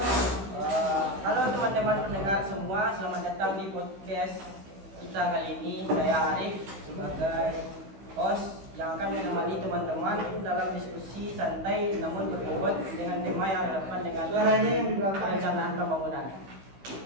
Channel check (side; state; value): left; late; 16 ms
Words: Halo teman-teman pendengar semua, selamat datang di podcast kita kali ini. Saya Arif sebagai host yang akan menemani teman-teman dalam diskusi santai namun berbobot dengan tema yang relevan dengan perencanaan pembangunan.